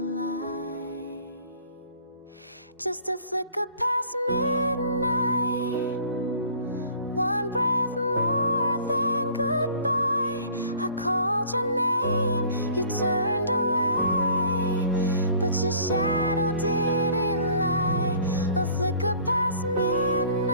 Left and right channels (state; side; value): inverted; both; correlation -0.51